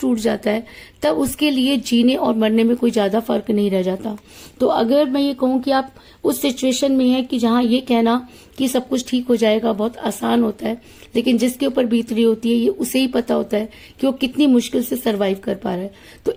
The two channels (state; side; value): identical; both; correlation 1.00